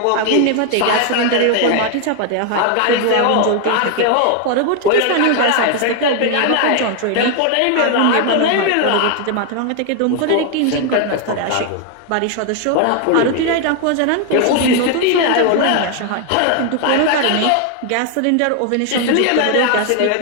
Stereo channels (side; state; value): both; different; correlation 0.00